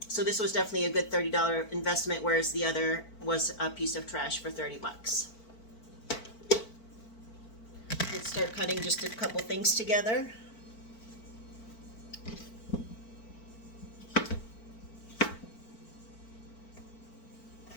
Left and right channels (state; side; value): late; right; 4.5 ms